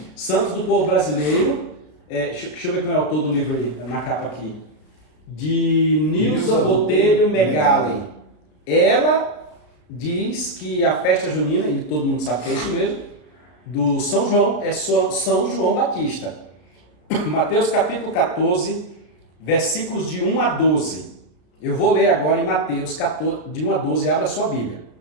Santos do Povo Brasileiro. Deixa eu ver quem é o autor do livro aí, na capa aqui. De Nilza Botelho Megali. Ela diz que a festa junina, e todo mundo sabe que é isso mesmo, do São João, é São João Batista. Mateus capítulo 14, versículos de 1 a 12. Eu vou ler agora em Mateus 14, de 1 a 12, abra sua Bíblia.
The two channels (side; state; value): right; late; 33 ms